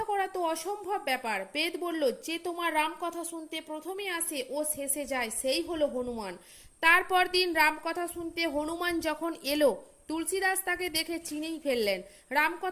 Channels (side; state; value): both; identical; correlation 1.00